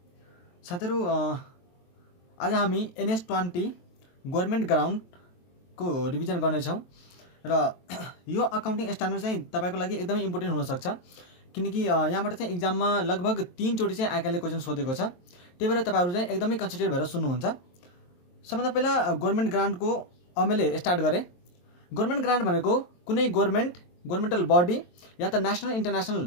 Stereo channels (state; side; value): late; right; 23 ms